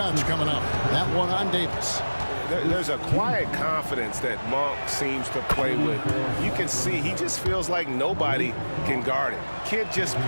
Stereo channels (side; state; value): both; inverted; correlation -1.00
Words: coming up. That one on Davis. There's a quiet confidence that Monk seems to play with. You can see he just feels like nobody can guard him. Kid just